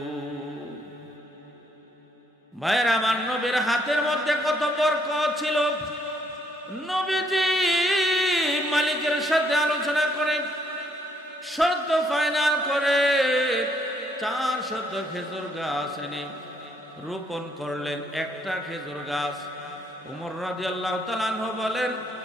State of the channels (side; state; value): both; normal; correlation 0.70